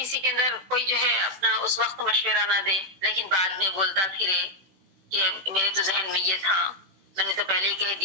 کے اندر کوئی جو ہے اپنا اس وقت مشورہ نہ دے لیکن بعد میں بولتا پھرے کہ میرے تو ذہن میں یہ تھا، میں نے تو پہلے ہی کہہ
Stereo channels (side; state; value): left; late; 16 ms